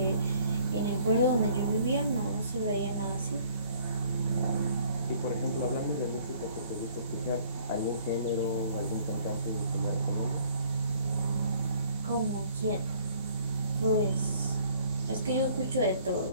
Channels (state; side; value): inverted; both; correlation -0.58